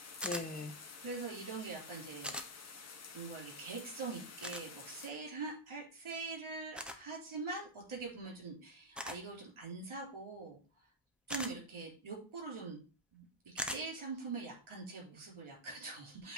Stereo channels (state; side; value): normal; both; correlation -0.06